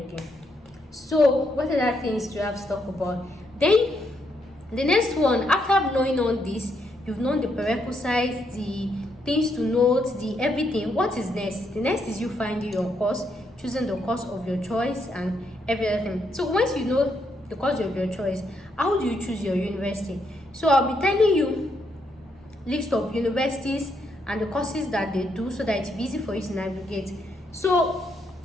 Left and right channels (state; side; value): normal; both; correlation 0.77